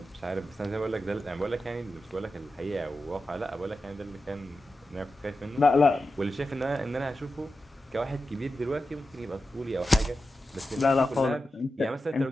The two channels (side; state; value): both; normal; correlation 0.91